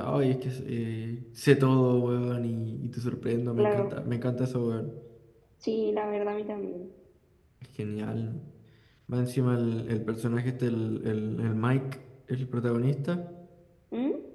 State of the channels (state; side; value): identical; both; correlation 1.00